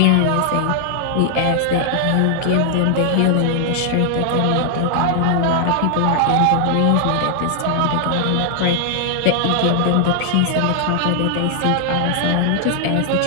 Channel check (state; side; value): different; both; correlation 0.00